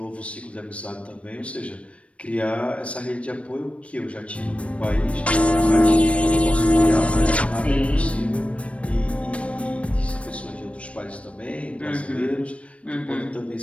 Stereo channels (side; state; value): right; late; 0.062 ms